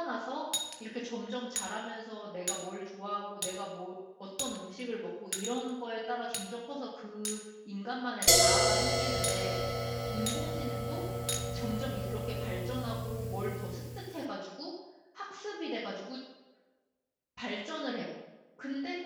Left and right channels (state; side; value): identical; both; correlation 1.00